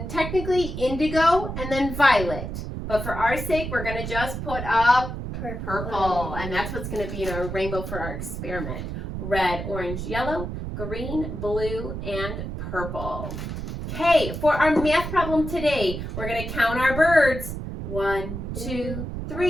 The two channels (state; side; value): noise; right; rumble, 6 dB below the sound